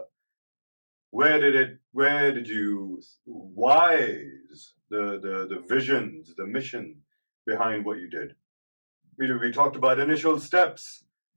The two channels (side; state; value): both; inverted; correlation -1.00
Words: Why is the visions, the mission behind what you did? We talked about initial steps.